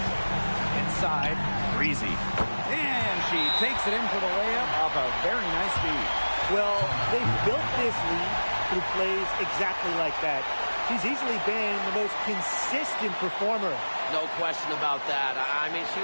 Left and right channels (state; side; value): inverted; both; correlation -1.00